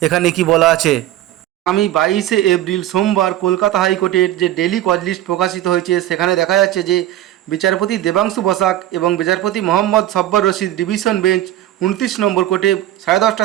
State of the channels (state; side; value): quieter; left; 13.5 dB